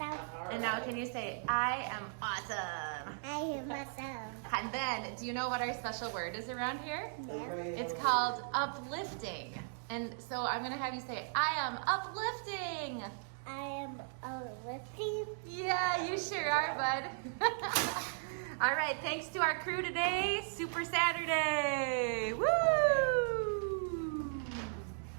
And now can you say, I am awesome? I am awesome. And then, do you know what our special word is around here? No. It's called uplifting. And so I'm gonna have you say, I am uplifting. I am lifting. Yeah, you sure are, bud. All right, thanks to our crew today. Super Saturday. Woo!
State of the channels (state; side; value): silent; left; digital silence